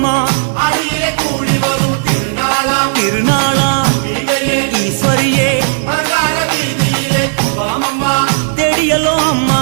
அடியிலே கூடி வரும் திருநாளா ஈஸ்வரியே அலங்கார வீதியிலே கும்பமம்மா தேடியலோ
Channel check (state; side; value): silent; left; digital silence